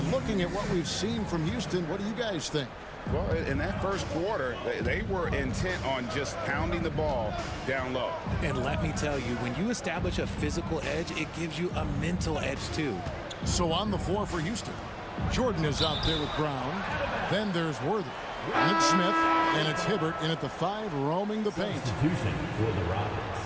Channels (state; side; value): identical; both; correlation 1.00